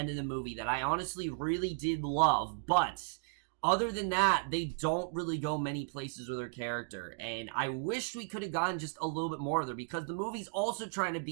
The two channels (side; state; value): left; silent; digital silence